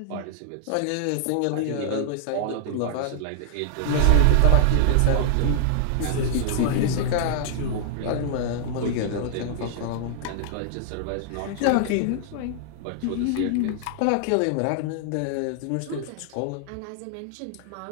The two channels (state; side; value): different; both; correlation -0.01